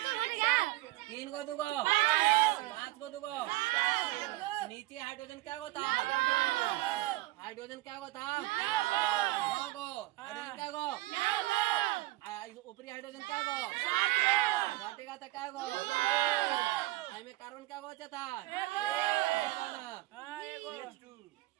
3 को 2 को 5 को 2 को नीचे हाइड्रोजन क्या होता, हाइड्रोजन क्या होता 9 को, हाइड्रोजन क्या गो, ऊपरी हाइड्रोजन क्या गो घटेगा था क्या गो, में कार्बन क्या गो था।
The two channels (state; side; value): quieter; left; 18.6 dB